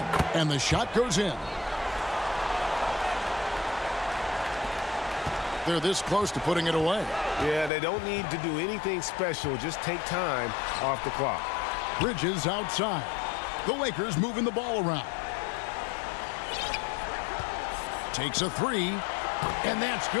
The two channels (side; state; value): right; drops out; at 7.7 s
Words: And the shot goes in. They're this close to putting it away. Yeah, they don't need to do anything special. Just take time off the clock. Bridges outside. The Lakers moving the ball around. Takes a 3. And that's